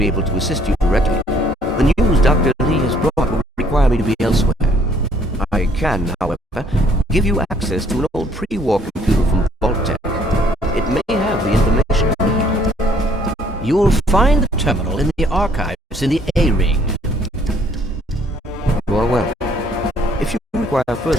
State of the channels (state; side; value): normal; both; correlation 0.63